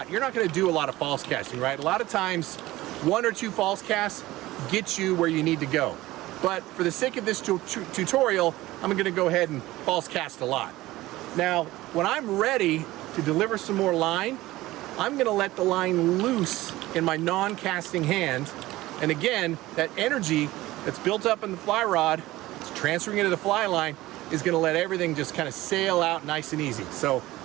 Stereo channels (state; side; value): quieter; left; 17.6 dB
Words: you're not going to do a lot of false casting, right? A lot of times, 1 or 2 false casts get you where you need to go. But for the sake of this tutorial, I'm going to go ahead and false cast a lot. Now, when I'm ready to deliver some more line, I'm going to let the line loose in my non-casting hand. And again, that energy that's built up in the fly rod, it's transferring into the fly line, is going to let everything just kind of sail out nice and easy. So